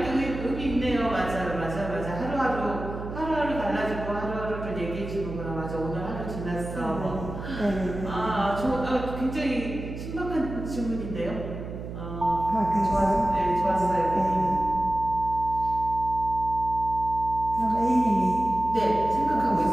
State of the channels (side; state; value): right; noise; hum, 8 dB below the sound